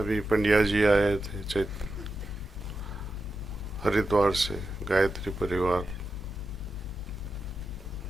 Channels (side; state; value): both; normal; correlation 0.89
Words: पंड्या जी आए थे हरिद्वार से, गायत्री परिवार।